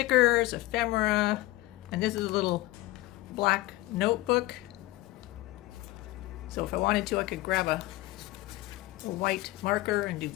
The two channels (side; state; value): right; quieter; 18.2 dB